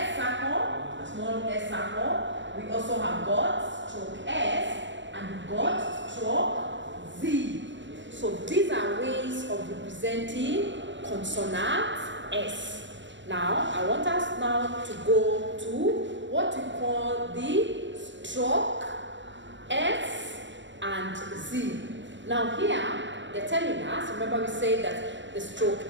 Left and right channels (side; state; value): left; late; 0.53 ms